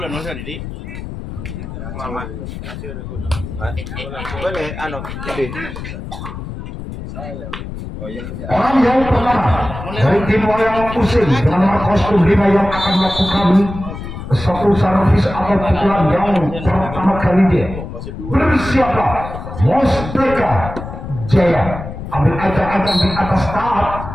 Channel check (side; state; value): left; noise; rumble, 9 dB below the sound